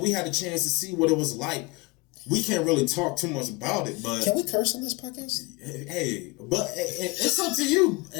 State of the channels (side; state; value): right; quieter; 25.4 dB